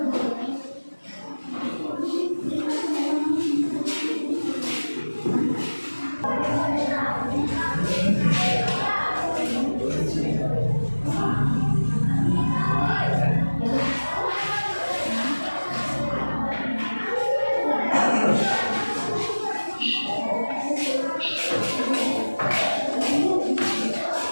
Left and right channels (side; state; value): both; inverted; correlation -1.00